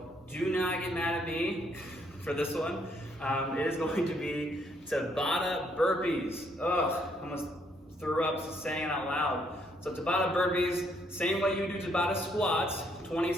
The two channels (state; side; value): normal; both; correlation 0.70